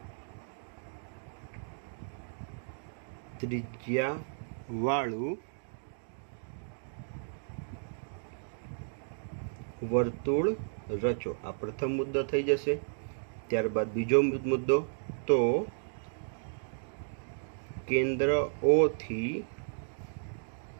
ત્રિજ્યાવાળું વર્તુળ રચો. આ પ્રથમ મુદ્દો થઈ જશે. ત્યારબાદ બીજો મુદ્દો, તો કેન્દ્ર O થી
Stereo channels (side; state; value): left; silent; digital silence